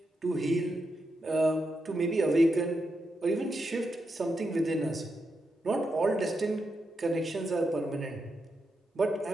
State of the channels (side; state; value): both; normal; correlation 0.85